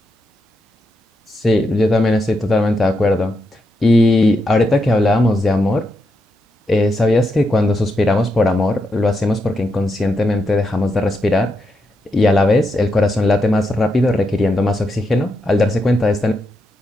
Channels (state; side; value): normal; both; correlation 0.83